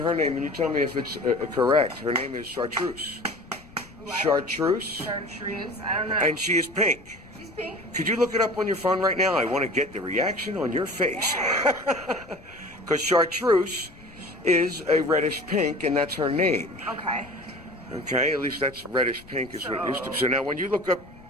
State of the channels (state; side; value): noise; left; rumble, 23 dB below the sound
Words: her name, and you tell me if it's correct. Her name is Chartreuse. Chartreuse? Chartreuse. I don't know. And she is pink. She's pink. Could you look it up on your phone right now? I want to get the reaction on your face. Because Chartreuse is a reddish pink, and that's her name. Okay. Okay, at least that's reddish pink is what it used to be. So now when you look up